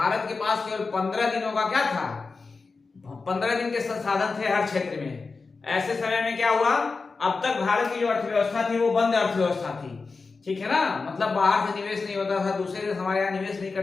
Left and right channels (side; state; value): right; quieter; 4.3 dB